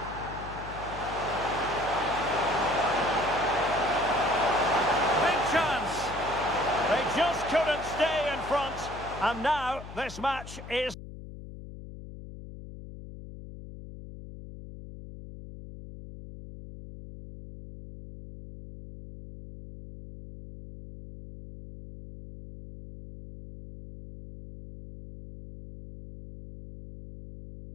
Big chance. They just couldn't stay in front. And now this match is...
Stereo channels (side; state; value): left; noise; hum, 13 dB below the sound